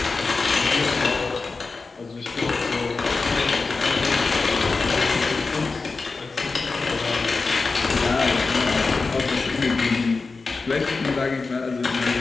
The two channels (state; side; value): quieter; right; 4.1 dB